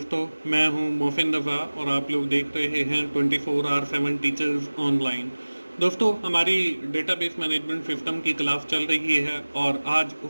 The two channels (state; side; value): inverted; both; correlation -1.00